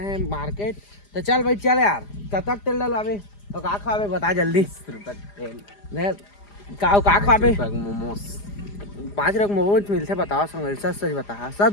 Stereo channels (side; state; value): right; late; 4.9 ms